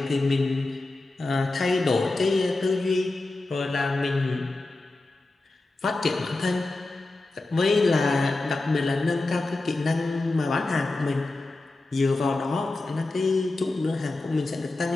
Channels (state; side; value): quieter; right; 3.1 dB